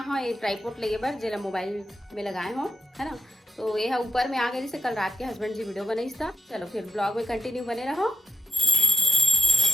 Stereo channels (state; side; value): normal; both; correlation 0.87